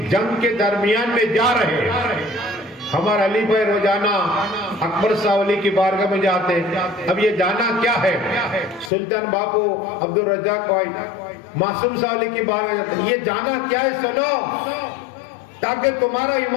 جنگ کے درمیان میں جا رہے ہیں. ہمارا علی بھائی روزانہ اکبر صاحب علی کی بارگاہ میں جاتے ہیں. اب یہ جانا کیا ہے؟ سلطان باپو عبد الرزاق بھائی معصوم صاحب علی کی بارگاہ جاتے ہیں. یہ جانا کیا ہے؟ سنو، تاکہ تمہارا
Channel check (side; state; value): right; drops out; at 8.9 s